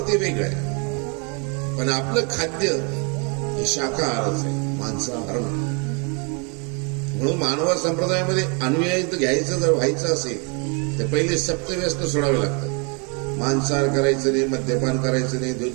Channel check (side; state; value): left; quieter; 34.7 dB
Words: ते वेगळं आहे, पण आपलं खाद्य हे शाकाहारच आहे, मांसाहार नाही. म्हणून मानव संप्रदायामध्ये अनुयायी घ्यायचं जर व्हायचं असेल तर पहिले सप्तव्यसन सोडावे लागतात. मांसाहार करायचं नाही, मद्यपान करायचं नाही,